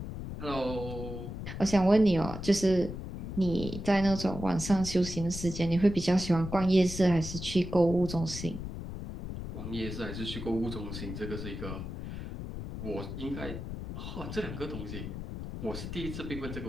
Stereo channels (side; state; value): left; noise; rumble, 8 dB below the sound